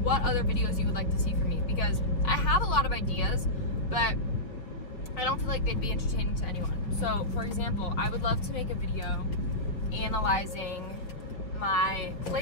what other videos you would like to see from me, because I have a lot of ideas, but I don't feel like they'd be entertaining to anyone. So, for example, I would love to make a video analyzing my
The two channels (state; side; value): late; right; 5.3 ms